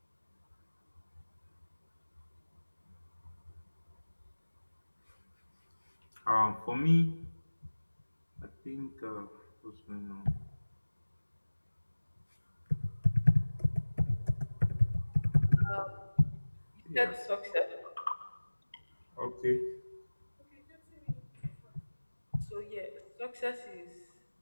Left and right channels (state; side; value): inverted; both; correlation -1.00